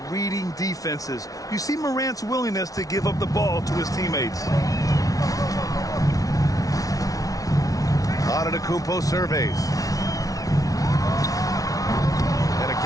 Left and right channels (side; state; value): right; late; 0.18 ms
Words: reading defenses. You see Morant's willingness to give up the ball to his teammates. Antetokounmpo surveys. And